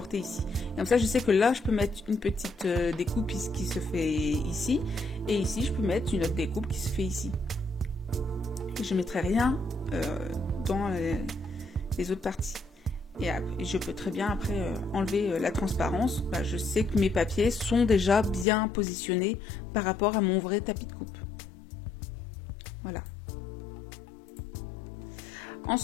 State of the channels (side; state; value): right; drops out; at 18.4 s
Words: ici. Et comme ça, je sais que là, je peux mettre une petite découpe qui se fait ici, et ici, je peux mettre une autre découpe qui se fait ici. Et je ne mettrai rien dans les autres parties. Et je peux très bien après enlever la transparence. Bah, je sais que mes papiers sont déjà bien positionnés par rapport à mon vrai tapis de coupe. Voilà.